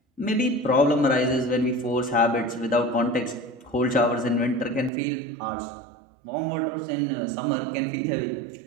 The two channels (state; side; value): drops out; left; at 4.9 s